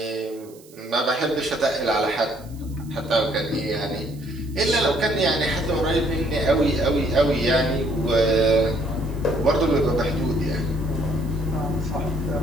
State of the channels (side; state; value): right; noise; hiss, 25 dB below the sound